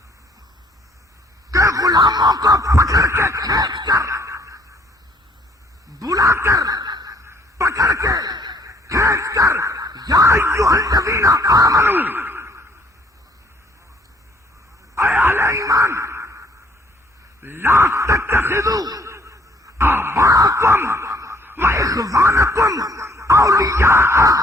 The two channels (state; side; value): normal; both; correlation 0.62